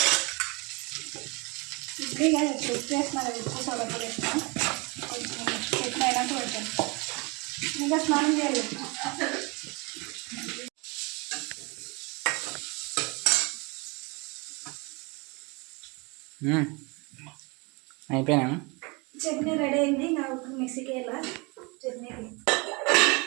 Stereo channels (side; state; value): left; quieter; 28.5 dB